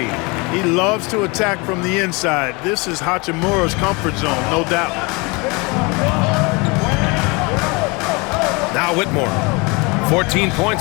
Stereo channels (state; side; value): quieter; right; 27.7 dB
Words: He loves to attack from the inside. This is Hachimura's comfort zone, no doubt. Now Whitmore. 14